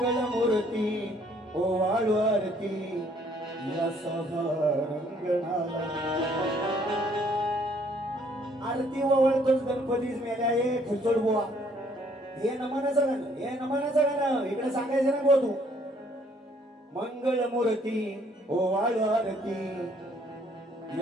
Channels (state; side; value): normal; both; correlation 0.63